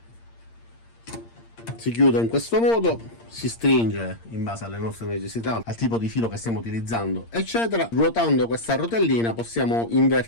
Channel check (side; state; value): right; late; 8.7 ms